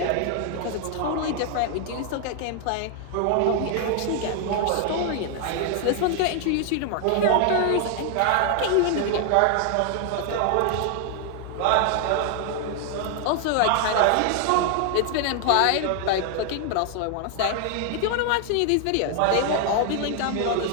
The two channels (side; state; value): both; different; correlation 0.00